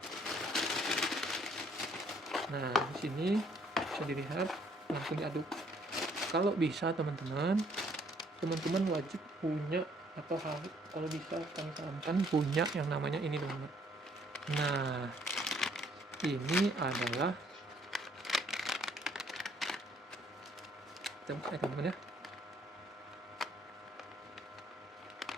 Nah, di sini bisa dilihat langsung diaduk. Kalau bisa teman-teman wajib punya atau kalau bisa kami sarankan punya yang namanya ini teman-teman. Nah, ini adalah teman-teman ya,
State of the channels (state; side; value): normal; both; correlation 0.64